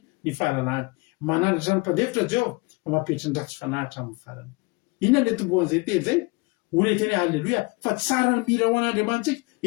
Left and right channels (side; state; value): right; quieter; 26.9 dB